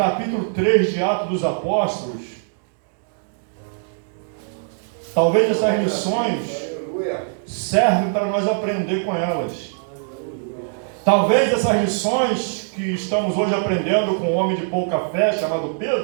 3 de Atos dos Apóstolos, talvez essas lições servem para nós aprender com elas. Talvez essas lições que estamos hoje aprendendo com um homem de pouca fé, chamado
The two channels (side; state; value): left; silent; digital silence